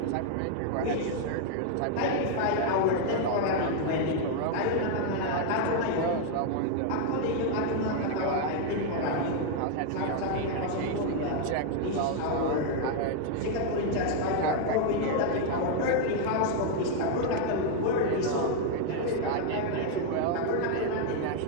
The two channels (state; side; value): different; both; correlation 0.00